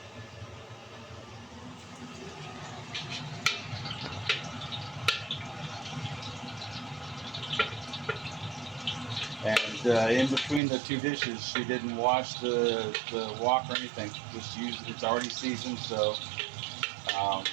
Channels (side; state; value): left; drops out; at 10.6 s